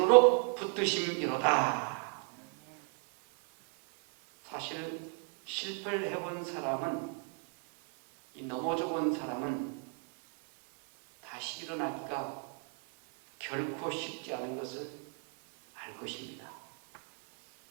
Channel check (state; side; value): quieter; left; 35.8 dB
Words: 붙드심이로다. 사실 실패를 해본 사람은, 이 넘어져 본 사람은 다시 일어나기가 결코 쉽지 않은 것을 알 것입니다.